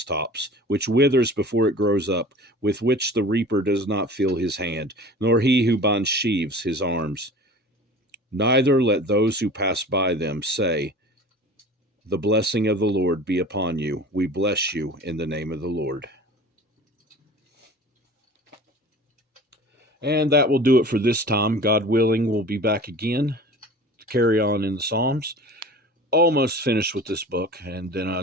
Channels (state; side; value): normal; both; correlation 0.40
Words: which withers before it grows up, with which the reaper does not feel his hand, nor he who binds sheaves his arms. Neither let those who pass by them say, the blessing of the Lord be upon you. We bless you in the name of the Lord. And that will do it for this time. God willing, we'll be back again to carry on in the Psalms. Almost finished with this book, and then I